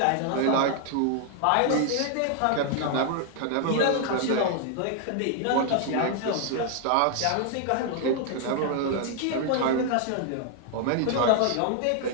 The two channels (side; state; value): both; different; correlation 0.00